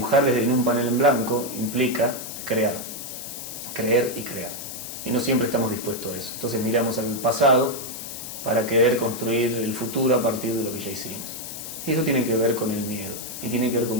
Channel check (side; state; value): left; noise; hiss, 9 dB below the sound